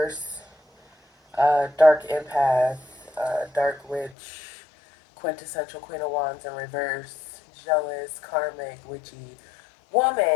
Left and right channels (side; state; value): right; drops out; at 4.2 s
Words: Dark Empath, Dark Witch, quintessential Queen of Wands in reverse, jealous, Karmic, witchy